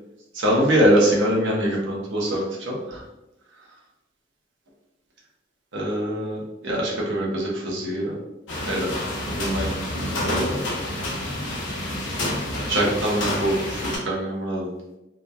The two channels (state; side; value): normal; both; correlation 0.46